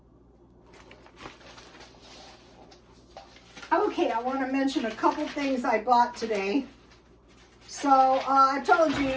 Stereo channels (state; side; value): identical; both; correlation 1.00